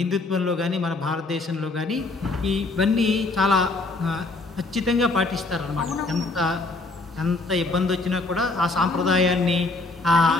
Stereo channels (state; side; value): quieter; right; 3.3 dB